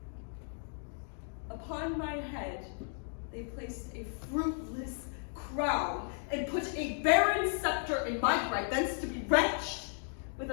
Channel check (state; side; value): silent; right; 55 dB below the other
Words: Upon my head they placed a fruitless crown, and put a barren scepter in my right, thence to be wrenched with